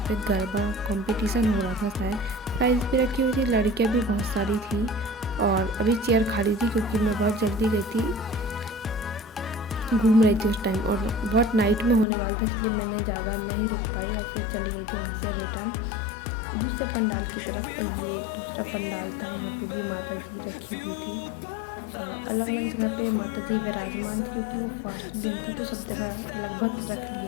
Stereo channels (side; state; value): right; drops out; at 12.1 s